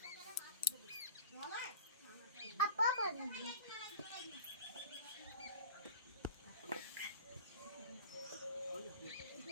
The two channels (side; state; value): both; inverted; correlation -0.39